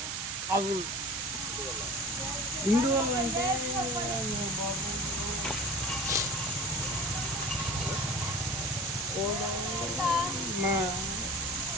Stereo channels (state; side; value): noise; right; hiss, 3 dB below the sound